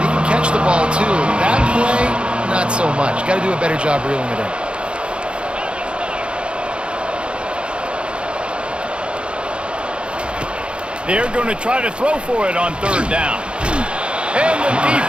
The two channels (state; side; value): late; left; 0.056 ms